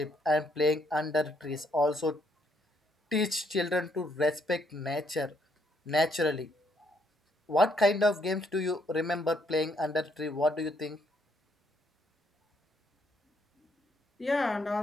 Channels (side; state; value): both; normal; correlation 0.71